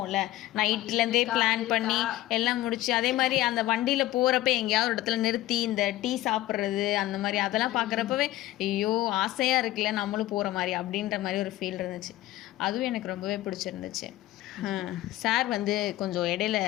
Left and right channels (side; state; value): right; quieter; 15.8 dB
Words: நைட்லேருந்தே பிளான் பண்ணி எல்லாம் முடிச்சு. அதே மாதிரி அந்த வண்டியில் போகிறப்ப எங்கேயாவது ஒரு இடத்துல நிறுத்தி இந்த டீ சாப்பிட்றது அந்த மாதிரி அதெல்லாம் பார்க்குறப்பவே ஐயோ ஆசையாக இருக்குல்ல நம்மளும் போகிற மாதிரி அப்படின்ற மாதிரி ஒரு ஃபீல் இருந்துச்சு. அதுவும் எனக்கு ரொம்பவே பிடிச்சிருந்துச்சு. சார் வந்து கொஞ்சம் இடையில